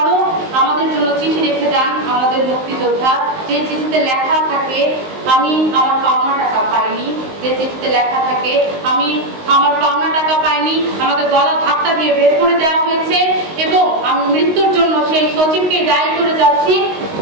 আমাদের জন্য চিঠি রেখে যান আমাদের মুক্তিযোদ্ধা। যে চিঠিতে লেখা থাকে আমি আমার পাওনা টাকা পাইনি, যে চিঠিতে লেখা থাকে আমি আমার পাওনা টাকা পাইনি, আমাকে গলা ধাক্কা দিয়ে বের করে দেওয়া হয়েছে এবং আমি মৃত্যুর জন্য সেই সচিবকে দায়ী করে যাচ্ছি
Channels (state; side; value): late; left; 19 ms